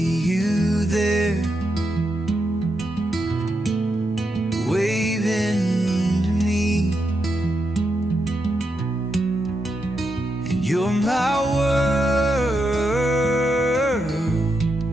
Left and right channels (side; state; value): both; normal; correlation 0.84